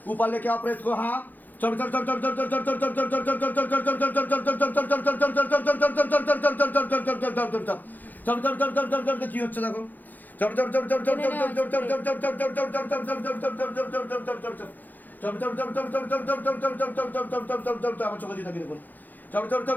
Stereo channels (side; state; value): right; late; 0.084 ms